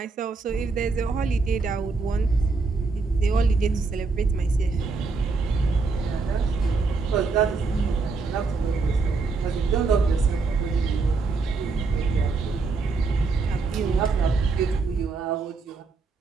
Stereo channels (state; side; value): quieter; left; 4.2 dB